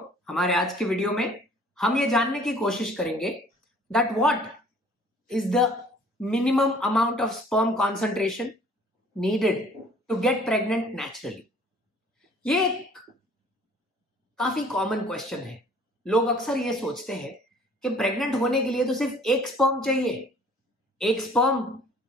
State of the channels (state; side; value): normal; both; correlation 0.54